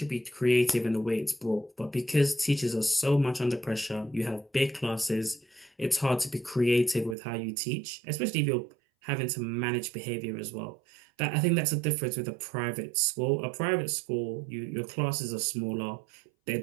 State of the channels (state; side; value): drops out; left; at 7.2 s